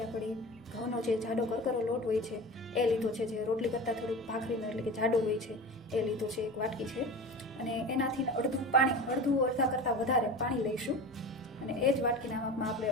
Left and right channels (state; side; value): normal; both; correlation 0.32